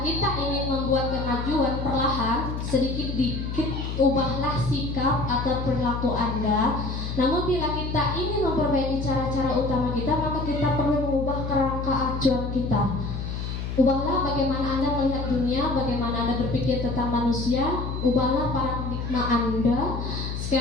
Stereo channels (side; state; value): left; noise; hum, 5 dB below the sound